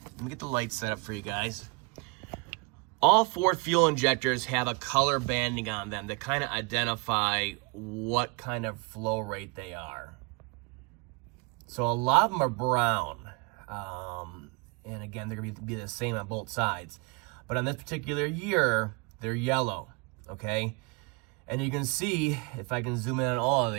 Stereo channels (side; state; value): left; quieter; 29.6 dB